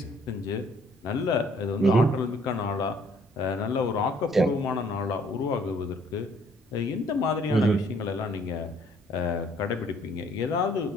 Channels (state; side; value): normal; both; correlation 0.62